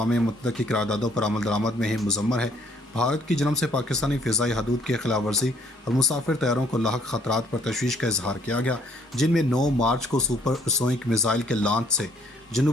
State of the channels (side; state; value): both; normal; correlation 0.64